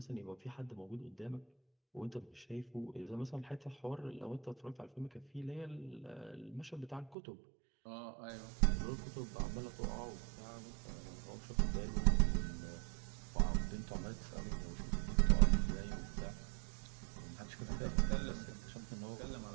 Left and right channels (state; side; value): drops out; left; at 7.2 s